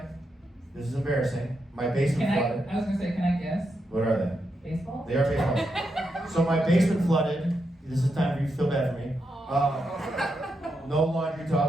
This is embarrassing. My basement Can flooded. I was gonna say, can I guess? What are they? Baseball? They are baseball. So my basement flooded. This is time for you to feel bad for me. No laundry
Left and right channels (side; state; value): both; normal; correlation 0.84